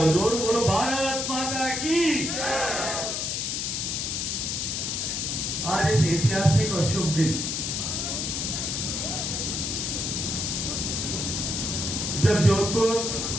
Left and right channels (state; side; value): noise; left; hiss, 1 dB below the sound